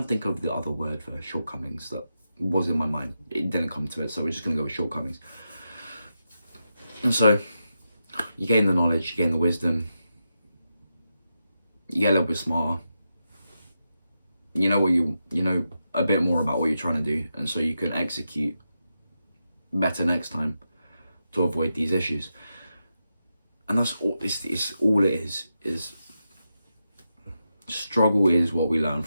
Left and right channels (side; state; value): both; inverted; correlation -0.88